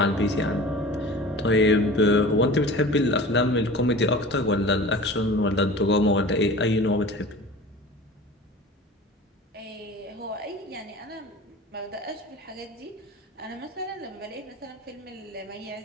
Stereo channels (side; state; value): both; normal; correlation 0.39